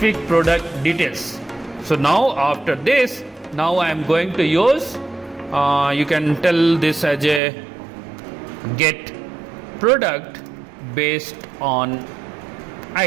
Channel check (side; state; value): left; drops out; at 7.4 s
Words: product details. So now after this, now I am going to use, you can tell this as a get product based on